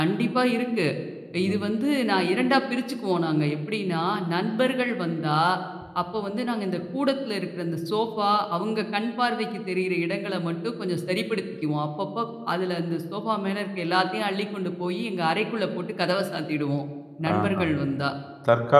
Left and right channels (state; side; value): identical; both; correlation 1.00